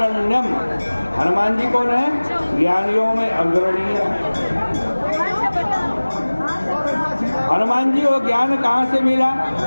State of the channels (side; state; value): both; inverted; correlation -1.00